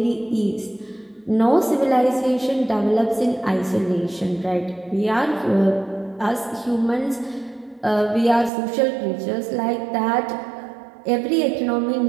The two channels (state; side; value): drops out; left; at 8.5 s